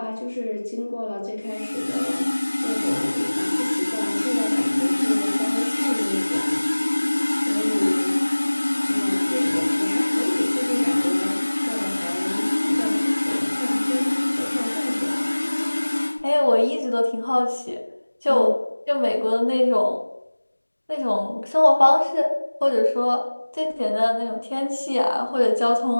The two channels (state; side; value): inverted; both; correlation -1.00